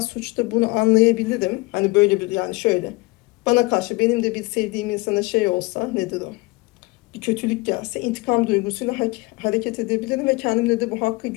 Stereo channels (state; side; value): quieter; right; 24.3 dB